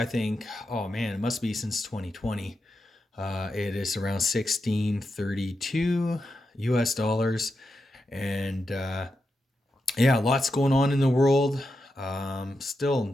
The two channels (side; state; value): both; normal; correlation 0.87